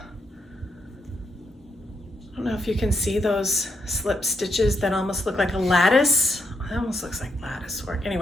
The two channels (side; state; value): both; normal; correlation 0.79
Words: I don't know if you can see those slip stitches that almost look like a lattice. It almost looks like lattice work.